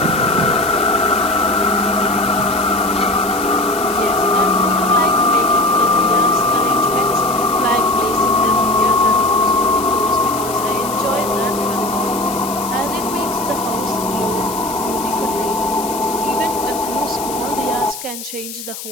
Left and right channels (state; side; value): noise; left; hiss, 10 dB below the sound